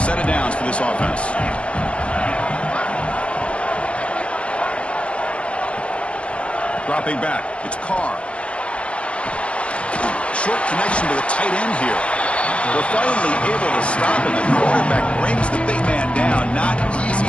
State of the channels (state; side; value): late; right; 0.057 ms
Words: of downs for this offense. Dropping back, it's Carr. Short connection to the tight end here. They're finally able to stop, and the quarterback brings the big man down. Not